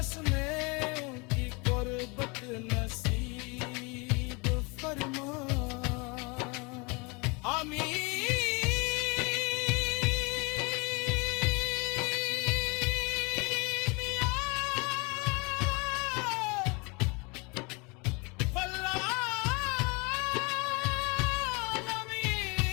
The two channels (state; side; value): quieter; right; 29.2 dB